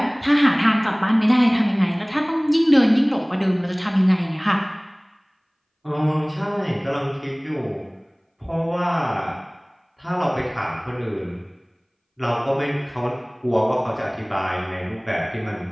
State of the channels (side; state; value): both; identical; correlation 1.00